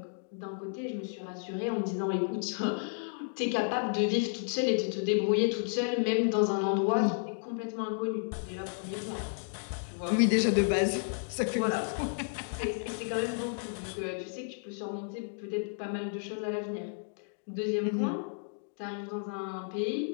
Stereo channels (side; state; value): right; silent; digital silence